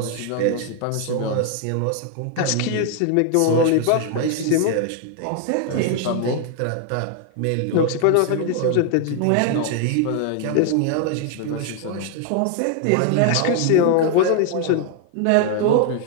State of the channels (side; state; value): both; different; correlation 0.00